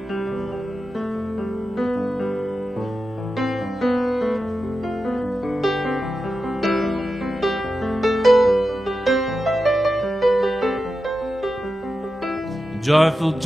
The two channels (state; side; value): normal; both; correlation 0.91